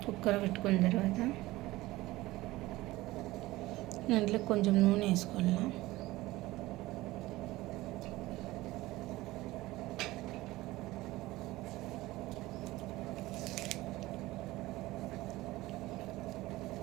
కుక్కర్ పెట్టుకున్న తర్వాత దాంట్లో కొంచెం నూనె వేసుకోవాలా.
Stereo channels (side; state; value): left; quieter; 18.4 dB